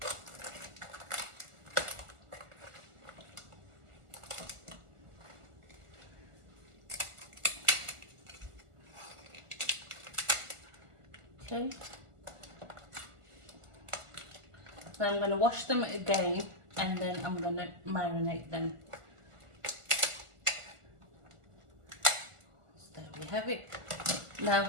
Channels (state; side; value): late; left; 1.4 ms